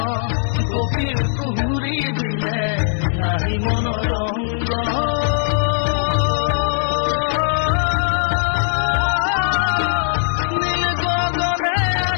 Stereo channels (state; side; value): silent; right; digital silence